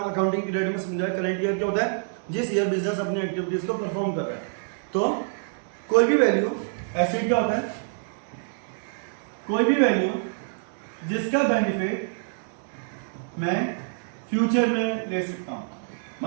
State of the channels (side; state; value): left; silent; digital silence